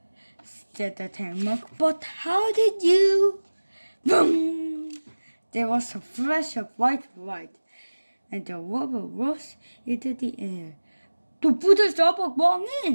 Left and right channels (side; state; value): both; inverted; correlation -1.00